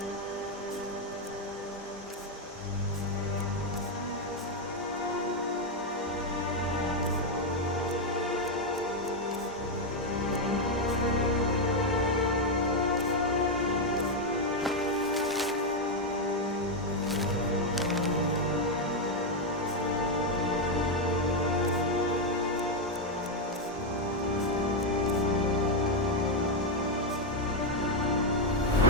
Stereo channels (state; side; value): normal; both; correlation 0.02